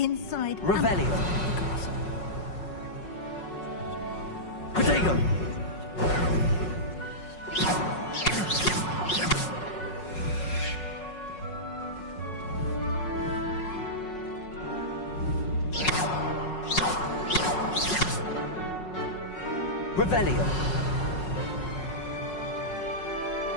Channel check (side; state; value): right; late; 5.4 ms